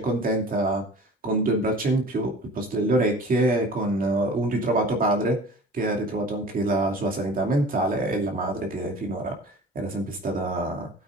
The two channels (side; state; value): both; normal; correlation 0.42